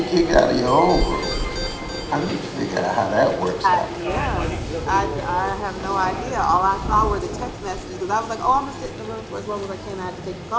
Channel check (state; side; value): identical; both; correlation 1.00